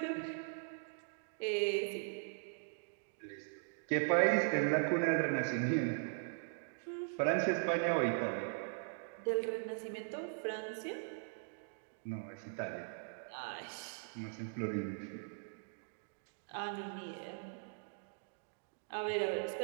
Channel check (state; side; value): silent; left; digital silence